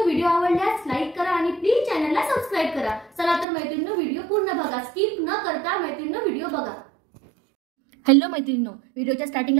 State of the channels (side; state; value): left; drops out; at 3.5 s